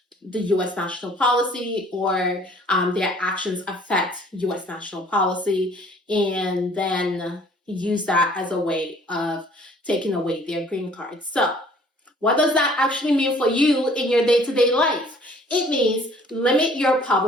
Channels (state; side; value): normal; both; correlation 0.55